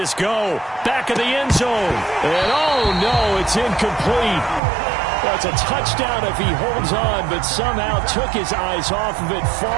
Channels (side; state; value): left; drops out; at 4.6 s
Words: go. Back of the end zone. And oh, no, it's incomplete. That's a touchdown if he holds on, but somehow took his eyes off of it,